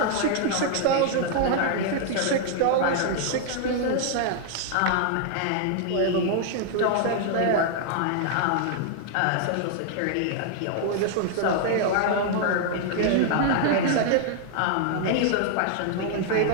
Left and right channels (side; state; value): both; different; correlation 0.00